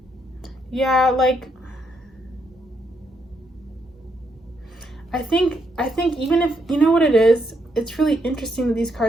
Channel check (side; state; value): both; normal; correlation 0.77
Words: Yeah, like I think even if, you know what it is, it's really interesting that these